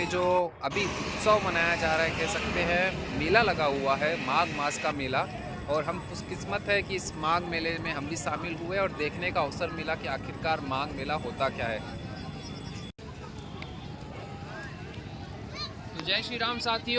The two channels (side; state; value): both; identical; correlation 1.00